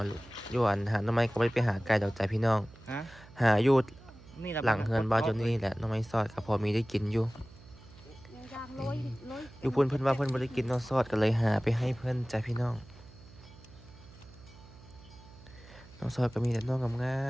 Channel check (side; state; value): right; noise; hum, 21 dB below the sound